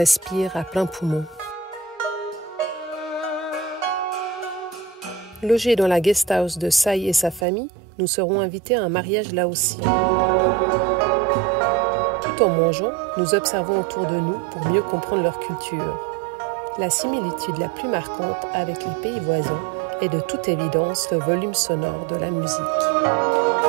à plein poumon. Logés dans la guest house de Sai et sa famille, nous serons invités à un mariage laotien. Tout en mangeant, nous observons autour de nous pour mieux comprendre leur culture. La similitude la plus marquante avec les pays voisins est de toute évidence le volume sonore de la musique.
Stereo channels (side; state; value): left; drops out; at 7.5 s